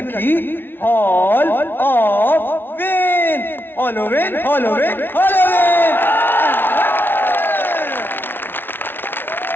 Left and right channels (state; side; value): late; right; 0.10 ms